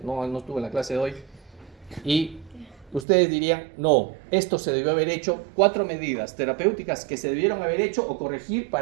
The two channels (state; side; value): drops out; left; at 3.1 s